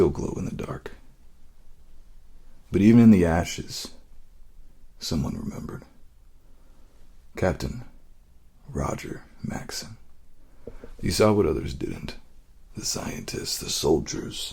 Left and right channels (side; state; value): both; identical; correlation 1.00